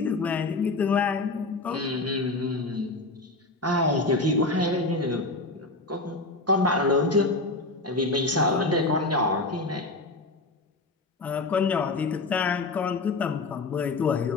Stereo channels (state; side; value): quieter; right; 3.1 dB